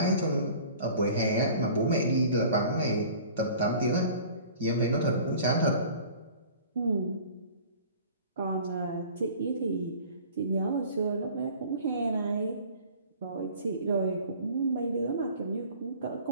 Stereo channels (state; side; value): inverted; both; correlation -0.46